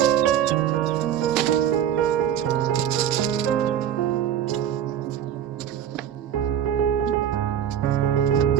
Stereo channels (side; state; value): left; quieter; 9.9 dB